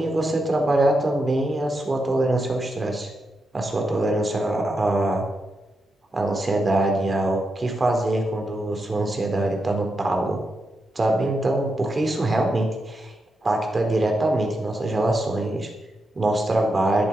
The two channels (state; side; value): normal; both; correlation 0.86